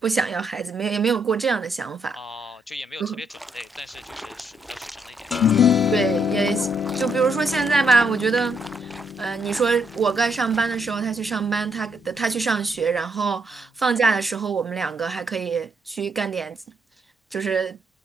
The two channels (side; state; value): both; normal; correlation 0.75